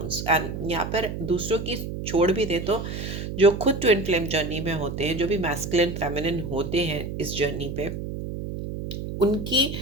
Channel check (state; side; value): noise; right; hum, 6 dB below the sound